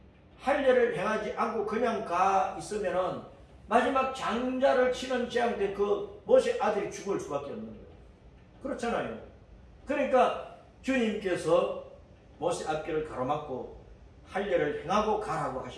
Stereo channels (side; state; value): both; identical; correlation 1.00